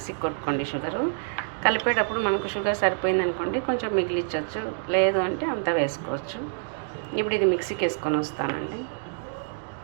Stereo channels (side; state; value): left; silent; digital silence